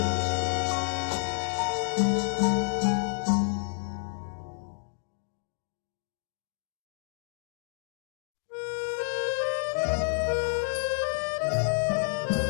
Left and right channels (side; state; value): right; silent; digital silence